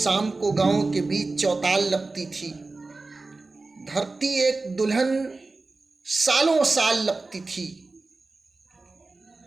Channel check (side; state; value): left; quieter; 3.5 dB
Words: को गांव के बीच चौताल लगती थी, धरती एक दुल्हन सालों साल लगती थी।